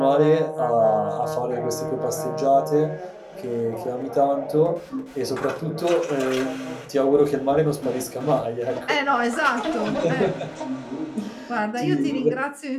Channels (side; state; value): both; identical; correlation 1.00